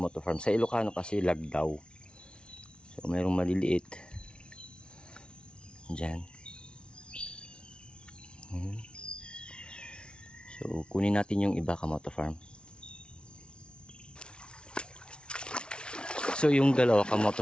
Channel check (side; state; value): right; late; 0.056 ms